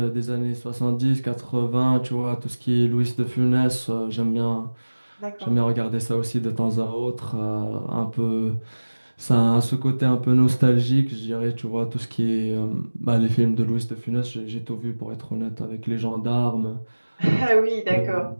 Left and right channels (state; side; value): inverted; both; correlation -1.00